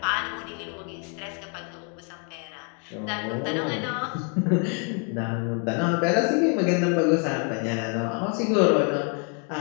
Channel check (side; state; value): right; quieter; 38.5 dB